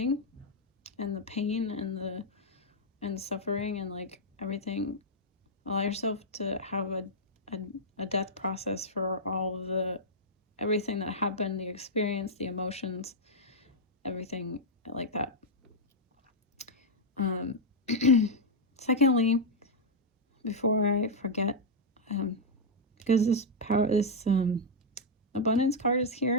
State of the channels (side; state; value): both; normal; correlation -0.04